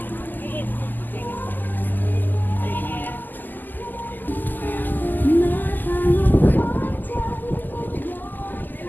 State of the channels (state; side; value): late; right; 0.087 ms